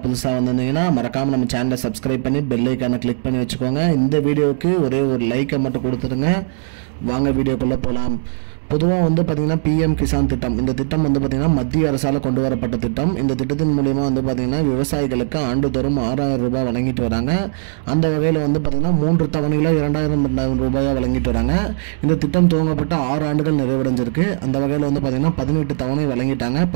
புதுசாக வந்திருந்தீங்கன்னா மறக்காமல் நம்ம சேனலை சப்ஸ்கிரைப் பண்ணி பெல் ஐக்கானை கிளிக் பண்ணி வச்சுக்கோங்க. இந்த வீடியோவுக்கு ஒரே ஒரு லைக்கை மட்டும் கொடுத்துருங்க. வாங்க வீடியோக்குள்ளே போகலாம். பொதுவாக பார்த்திங்கன்னா பிஎம் கிசான் திட்டம், இந்த திட்டம் பார்த்திங்கன்னா மத்திய அரசால் கொண்டு வரப்பட்ட திட்டம். இந்த திட்டத்தின் மூலிமா பார்த்திங்கன்னா விவசாயிகளுக்கு ஆண்டுதோறும் 6000 ரூபாய் வழங்கிட்டு வராங்க. அந்த வகையில் பார்த்திங்கன்னா 3 தவணைகளாக 2000 ரூபாயாக வழங்கிட்டு வராங்க. இந்த திட்டம் துவங்கப்பட்ட 6 ஆண்டுகள் நிறைவடைஞ்சிருக்கு. அந்த வகையில் பார்த்திங்கன்னா 18 தவணை வழங்கிட்டாங்க.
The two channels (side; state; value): left; silent; digital silence